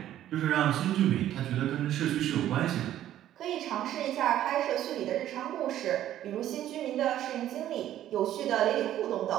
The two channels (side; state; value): left; quieter; 12.3 dB